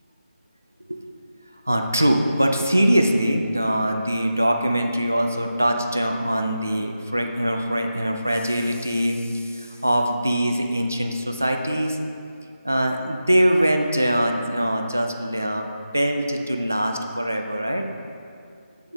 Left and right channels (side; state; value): both; inverted; correlation -0.91